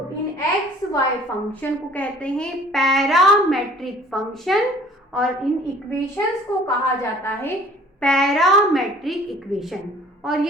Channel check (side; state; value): both; normal; correlation 0.52